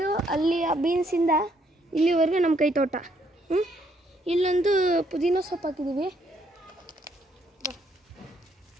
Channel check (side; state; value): both; normal; correlation 0.70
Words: ಅಲ್ಲಿ ಆ ಬೀನ್ಸಿಂದ ಇಲ್ಲಿವರೆಗೂ ನಮ್ಮ ಕೈ ತೋಟ. ಇಲ್ಲೊಂದು ಪುದೀನ ಸೊಪ್ಪು ಹಾಕಿದ್ದೀವಿ.